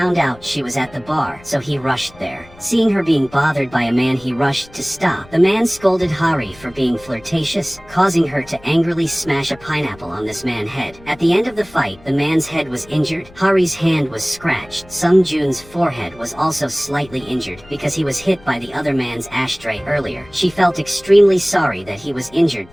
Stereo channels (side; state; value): left; noise; rumble, 23 dB below the sound